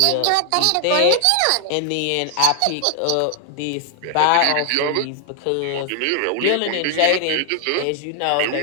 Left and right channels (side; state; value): both; different; correlation 0.00